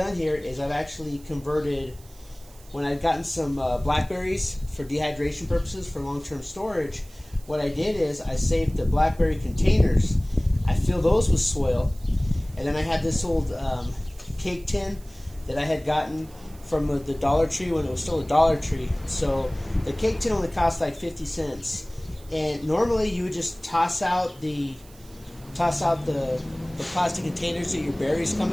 here is I've actually converted, when I've gotten some blackberries for dehydration purposes for long-term storage, what I did is I saved the blackberry containers. I fill those with soil, and then I had this old cake tin that I had gotten from the Dollar Tree when it was still a Dollar Tree. So the cake tin only cost like 50 cents. And normally you would just toss out the plastic containers that your berries come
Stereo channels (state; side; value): noise; right; hiss, 24 dB below the sound